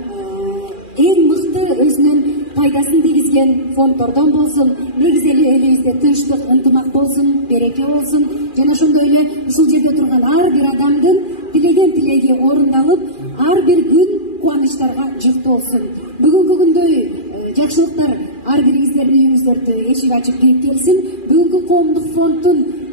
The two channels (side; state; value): right; late; 2.4 ms